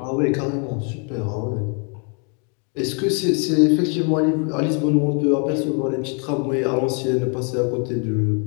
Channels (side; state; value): right; quieter; 38.3 dB